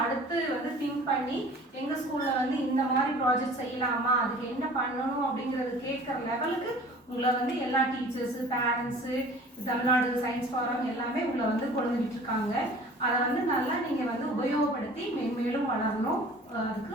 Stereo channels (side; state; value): both; normal; correlation 0.46